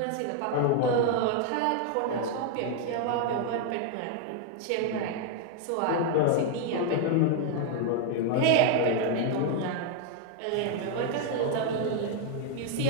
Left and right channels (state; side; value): different; both; correlation 0.00